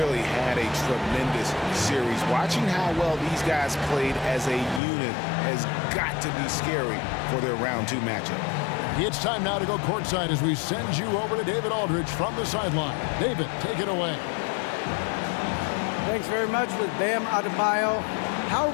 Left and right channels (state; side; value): drops out; right; at 4.8 s